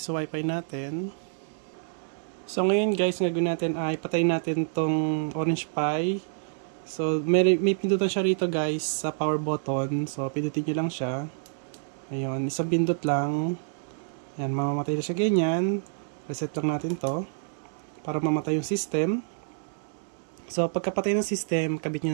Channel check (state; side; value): silent; left; digital silence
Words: wifi natin. So ngayon guys, gagawin natin ay patayin natin tong Orange Pi. So may pindutan siya rito guys sa power button. So pindutin nyo lang siya. Ayun, isang pindot lang. Ayan, mamamatay na siya ganyan. Reset lang natin to para mamatay yung system. So pagkapatay ng system, kabit nyo